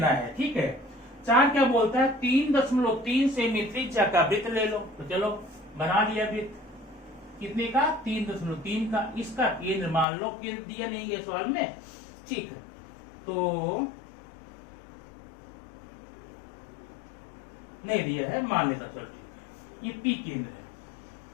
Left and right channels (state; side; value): drops out; right; at 10.1 s